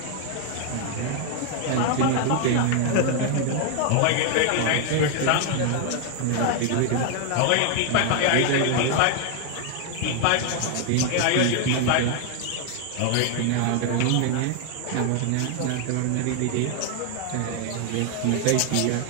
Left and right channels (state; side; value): different; both; correlation 0.00